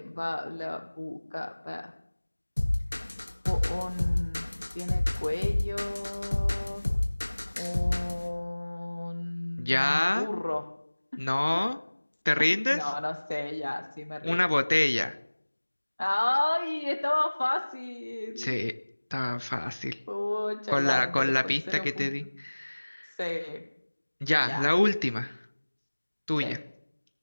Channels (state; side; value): inverted; both; correlation -1.00